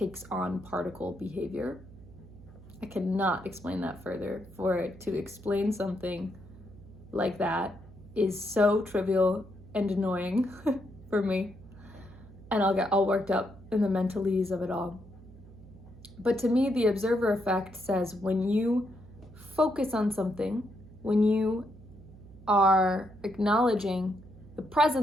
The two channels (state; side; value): noise; right; hum, 19 dB below the sound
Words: on particle behavior. I cannot explain that further. For it to explain something like that is so trivial and annoying for me, and I'll get all worked up in the mentalese of it all. But to me, the observer effect says when you focus on something, when you are acknowledging the